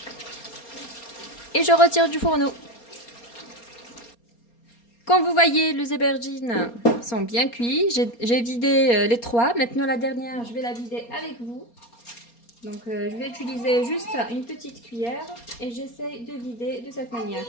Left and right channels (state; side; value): late; right; 4.3 ms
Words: Et je retire du fourneau. Comme vous voyez, les aubergines sont bien cuits. J'ai vidé les 3. Maintenant la dernière, je vais la vider avec vous. Donc je vais utiliser juste une petite cuillère et j'essaie de vider de cette manière.